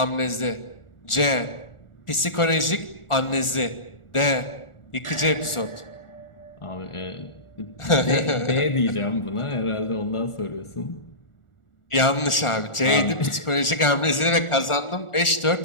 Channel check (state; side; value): late; right; 1.4 ms